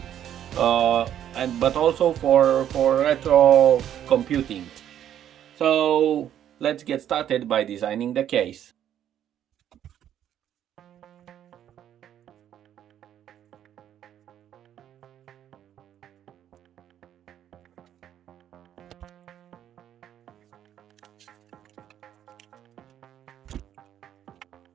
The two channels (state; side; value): quieter; left; 10.5 dB